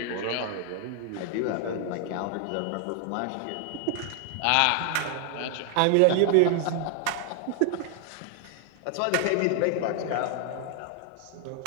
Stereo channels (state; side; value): different; both; correlation 0.00